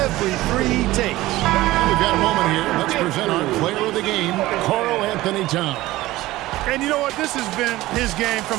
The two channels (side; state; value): left; quieter; 17.4 dB